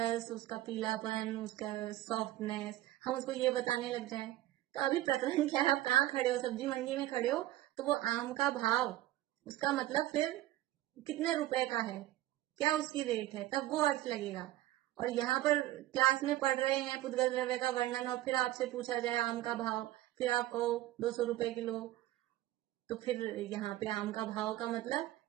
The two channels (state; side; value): quieter; left; 15.3 dB